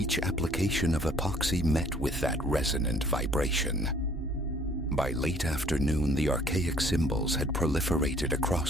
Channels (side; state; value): both; normal; correlation 0.58